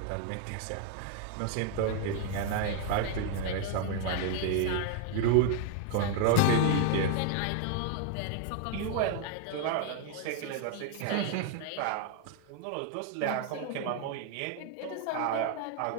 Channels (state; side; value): different; both; correlation 0.00